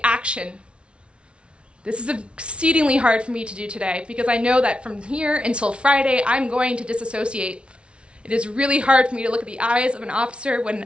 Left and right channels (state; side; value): late; left; 0.059 ms